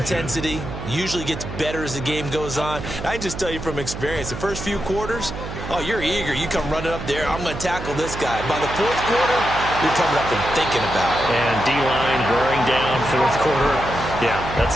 usually gets better as the game goes on. I can just tell you from experience, the first few quarters, oh, you're eager. You come running up there. I'm going to tackle this guy. By the 4th quarter, you're coming up and thinking about it. And D-line wearing down 4th quarter. Yeah,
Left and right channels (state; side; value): noise; right; hum, 8 dB below the sound